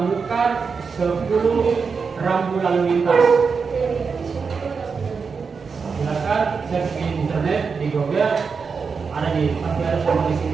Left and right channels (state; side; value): quieter; left; 5.4 dB